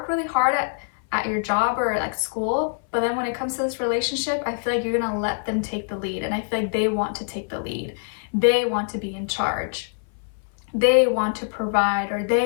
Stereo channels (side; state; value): right; silent; 59 dB below the other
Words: really hard at your job or like school, but then when it comes to this relationship, I feel like you're gonna let them take the lead, and I feel like they want to take the lead. They want to be in charge. They want to provide, or